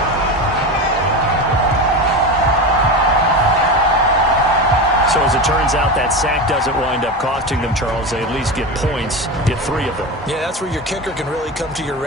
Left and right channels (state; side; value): normal; both; correlation 0.22